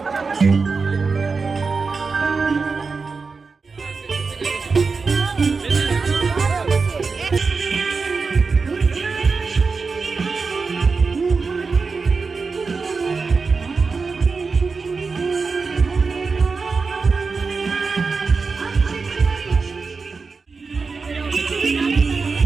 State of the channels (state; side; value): quieter; left; 4.6 dB